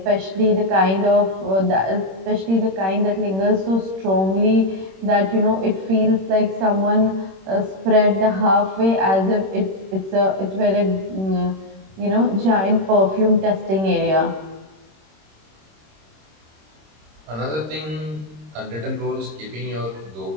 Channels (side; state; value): left; late; 26 ms